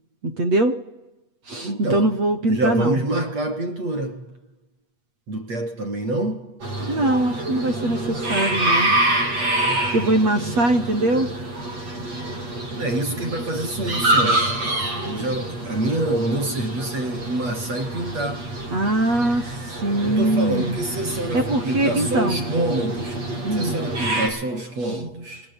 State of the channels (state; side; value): late; left; 8.3 ms